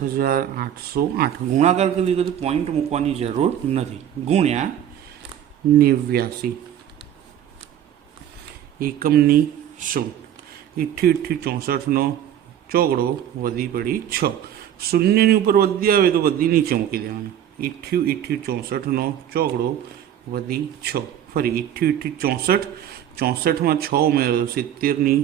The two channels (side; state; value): left; quieter; 10.4 dB